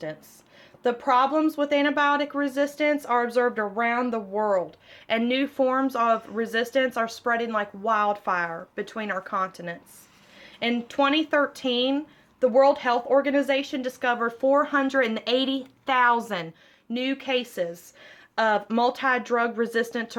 The problems with antibiotic resistance are observed around the world, and new forms of resistance are spreading like wildfire between our continents. In 2013, the World Health Organization discovered 480,000 new cases of multi-drug resistant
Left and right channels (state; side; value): identical; both; correlation 1.00